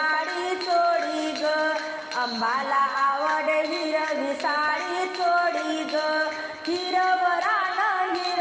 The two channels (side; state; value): both; identical; correlation 1.00